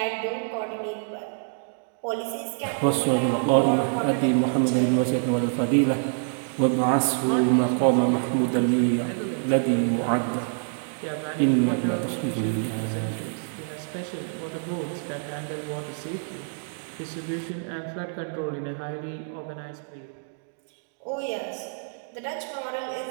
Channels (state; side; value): silent; left; digital silence